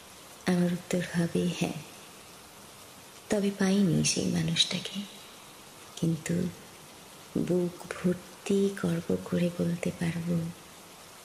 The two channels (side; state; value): both; identical; correlation 1.00